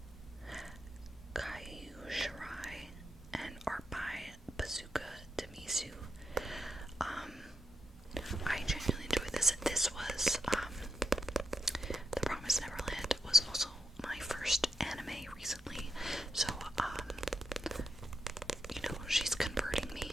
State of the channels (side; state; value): both; normal; correlation 0.85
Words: Caillou Shirai and art by Bazooka Demisu. I genuinely enjoyed this. This was, The Promise Neverland was also my first anime recently, so, you know, she's converting me.